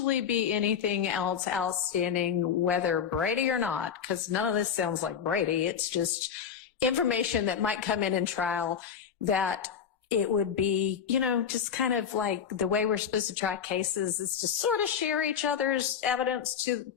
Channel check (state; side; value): quieter; right; 7.8 dB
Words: be anything else outstanding, whether Brady or not, because none of this sounds like Brady. It's just information that might come in trial that it would be, you know, just kind of like the way we're supposed to try cases is to sort of share each other's evidence to,